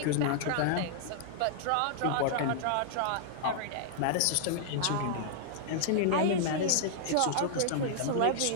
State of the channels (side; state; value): both; different; correlation -0.01